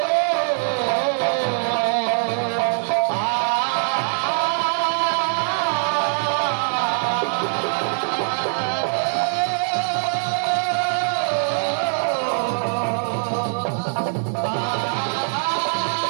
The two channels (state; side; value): silent; left; digital silence